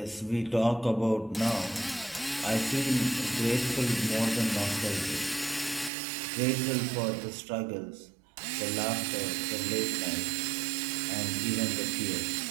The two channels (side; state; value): left; drops out; at 5.9 s